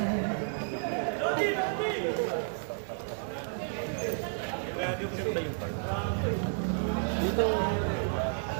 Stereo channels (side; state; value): left; silent; 57 dB below the other